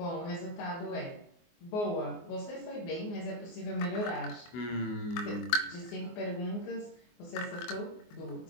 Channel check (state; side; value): late; right; 24 ms